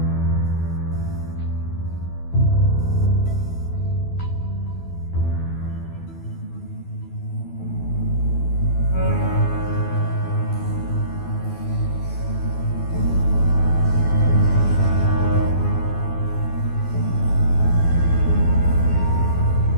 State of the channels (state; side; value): late; right; 12 ms